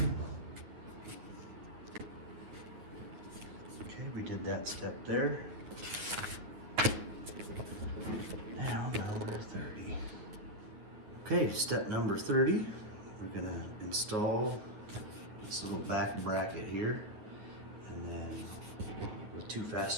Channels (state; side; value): late; left; 9.2 ms